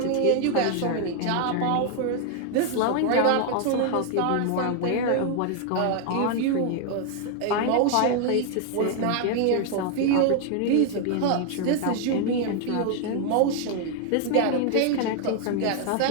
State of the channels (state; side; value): different; both; correlation 0.00